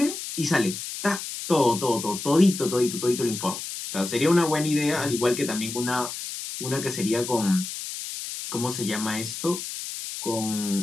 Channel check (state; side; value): noise; left; hiss, 7 dB below the sound